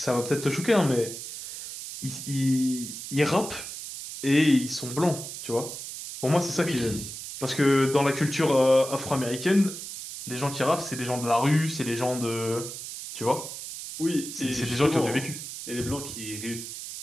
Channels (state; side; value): noise; right; hiss, 9 dB below the sound